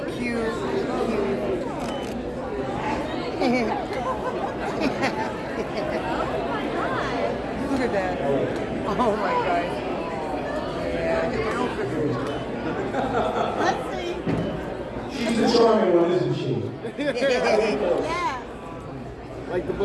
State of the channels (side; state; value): both; identical; correlation 1.00